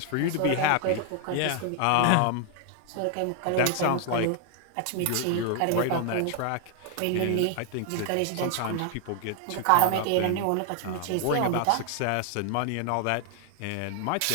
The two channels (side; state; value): both; different; correlation 0.00